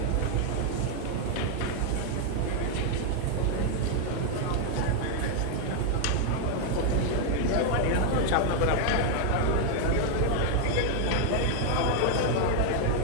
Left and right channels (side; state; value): both; different; correlation 0.00